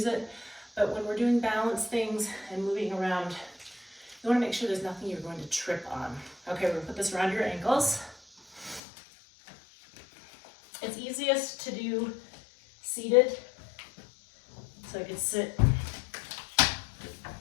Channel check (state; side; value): drops out; right; at 8.8 s